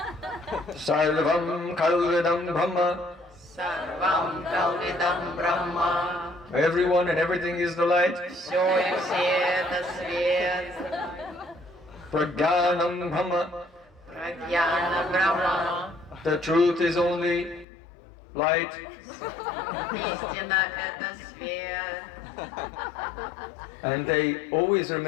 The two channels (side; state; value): right; drops out; at 17.7 s